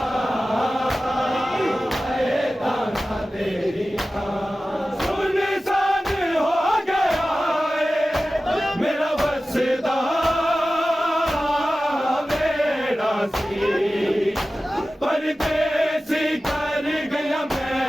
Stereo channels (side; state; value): both; normal; correlation 0.95